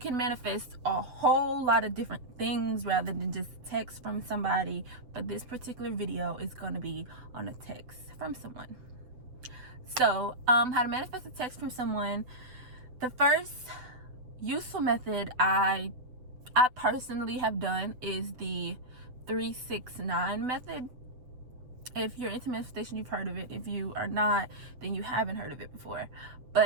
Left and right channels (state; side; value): late; left; 7.8 ms